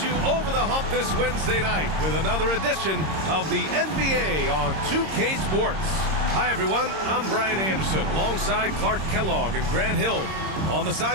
you over the hump this Wednesday night with another edition of the NBA on 2K Sports. Hi, everyone. I'm Brian Anderson alongside Clark Kellogg and Grant Hill. On the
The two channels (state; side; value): late; left; 26 ms